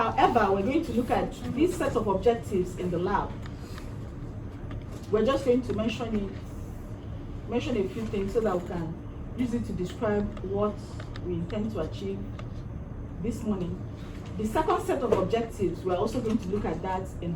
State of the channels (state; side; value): identical; both; correlation 1.00